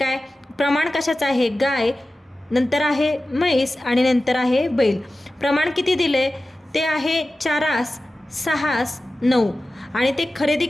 प्रमाण कशाचं आहे, गाय, नंतर आहे म्हैस आणि नंतर आहे बैल. प्रमाण किती दिले ते आहे 4, 6, 9, आणि ते खरेदी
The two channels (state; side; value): normal; both; correlation 0.95